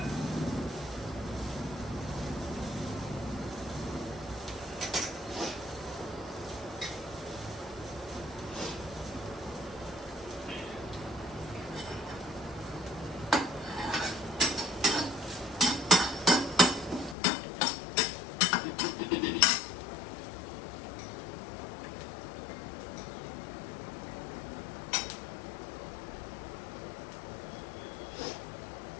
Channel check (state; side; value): drops out; right; at 17.2 s